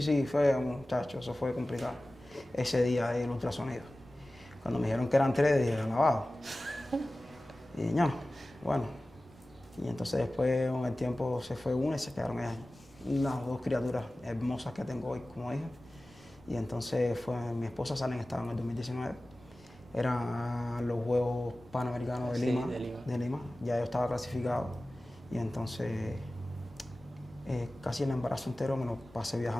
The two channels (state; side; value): noise; left; rumble, 29 dB below the sound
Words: fue, muchacho, eso fue complicado. Ese día del ultrasonido. Cuando me dijeron que eran 3, dije, alabado. Y no, bueno. Y entonces después, con el tiempo, se fue una y se quedaron ellas. Las 2 criaturas hermosas que tengo hoy como hija. Y entonces mi esposa sale en estado en el 2019. Eran los Juegos Panamericanos de Lima. Ya yo estaba clasificado. Y entonces casi el embarazo entero me lo pasé